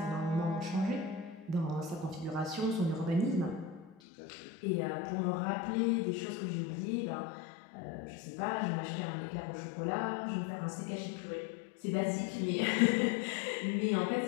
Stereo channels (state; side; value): drops out; right; at 4.0 s